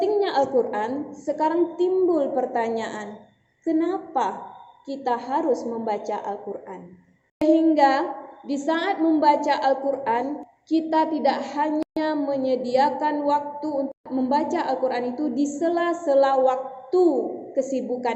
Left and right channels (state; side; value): identical; both; correlation 1.00